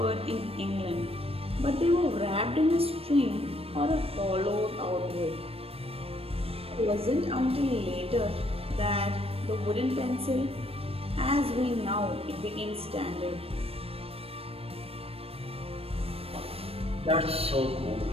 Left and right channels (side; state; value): left; late; 0.28 ms